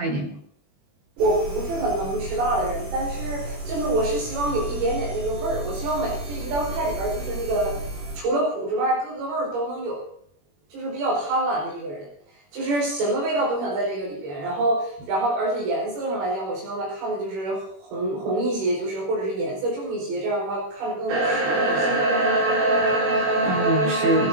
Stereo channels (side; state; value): left; late; 21 ms